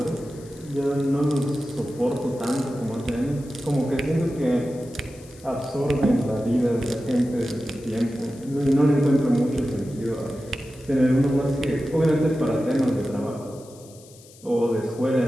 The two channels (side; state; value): left; noise; hiss, 23 dB below the sound